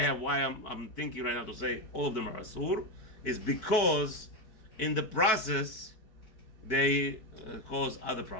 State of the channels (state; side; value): late; right; 4.6 ms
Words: why I'm thinking right now to say all of them are asur, is because in the process they cause other